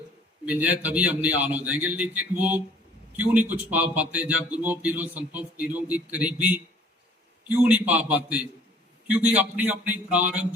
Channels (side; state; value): both; normal; correlation 0.54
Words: मिल जाए तभी हम निहाल हो जाएंगे। लेकिन वो क्यों नहीं कुछ पा पाते, जब गुरुओं पीरों संतों फकीरों की करीबी क्यों नहीं पा पाते? क्योंकि अपनी अपनी